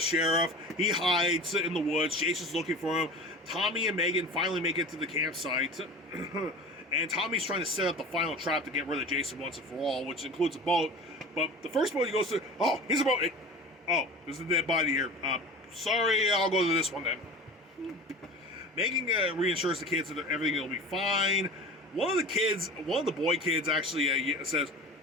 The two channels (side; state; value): both; normal; correlation 0.35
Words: He hides in the woods. Jason's looking for him. Tommy and Megan finally make it to the campsite. And Tommy's trying to set up the final trap to get rid of Jason once and for all, which includes a boat. But the first boat he goes to... Oh, here's a boat. Oh, there's a dead body here. Sorry, I'll go to this one then. Megan reassures the kids that everything will be fine. One of the boy kids actually says,